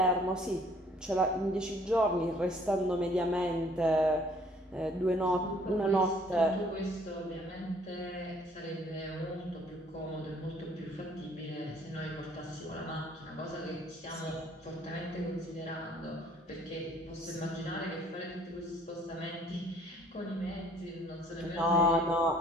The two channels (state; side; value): normal; both; correlation 0.59